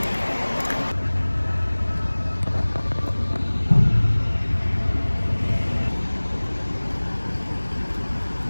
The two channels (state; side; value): inverted; both; correlation -1.00